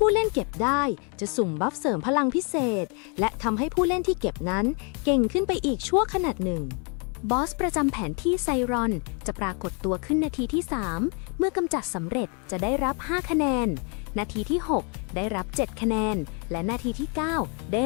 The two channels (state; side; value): quieter; right; 36.2 dB